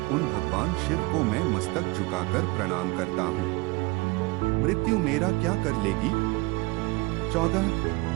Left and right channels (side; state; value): left; quieter; 23.6 dB